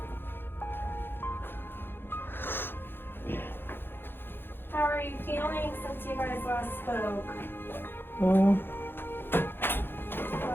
How are you feeling since you guys last spoke? About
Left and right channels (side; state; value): right; late; 0.10 ms